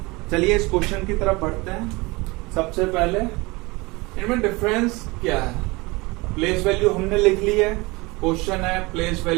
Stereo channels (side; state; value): left; quieter; 24.1 dB